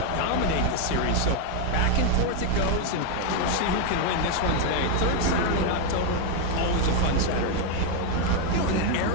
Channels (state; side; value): different; both; correlation 0.01